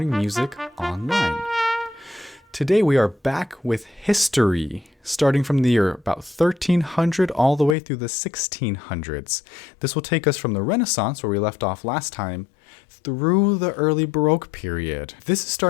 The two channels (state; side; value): drops out; right; at 7.8 s